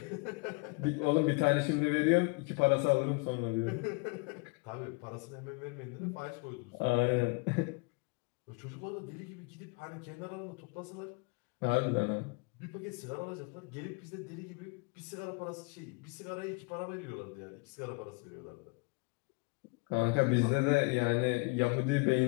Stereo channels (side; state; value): right; quieter; 30.2 dB